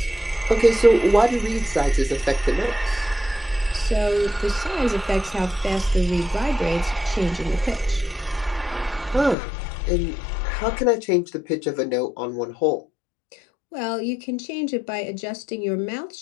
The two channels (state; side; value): drops out; right; at 9.3 s